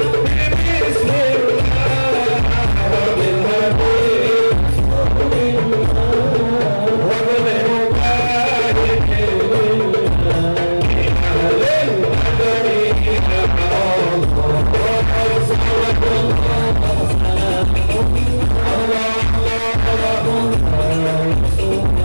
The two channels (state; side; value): inverted; both; correlation -1.00